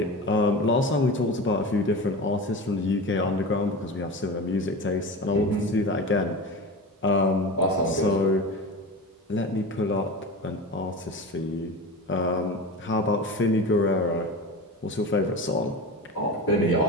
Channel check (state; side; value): normal; both; correlation 0.28